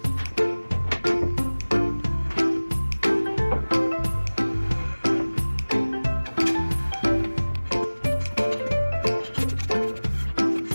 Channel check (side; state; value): both; inverted; correlation -1.00